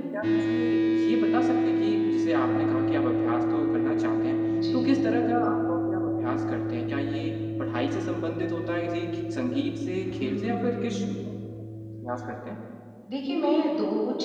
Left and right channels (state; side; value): identical; both; correlation 1.00